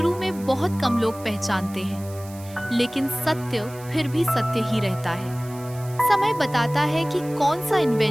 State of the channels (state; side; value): noise; right; hiss, 20 dB below the sound